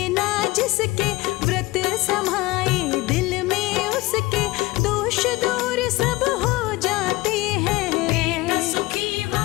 ना जिसके व्रत समाए दिल में उसके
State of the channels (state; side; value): quieter; right; 20.6 dB